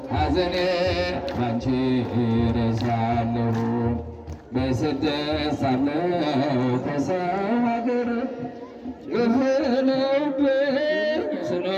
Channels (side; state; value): both; identical; correlation 1.00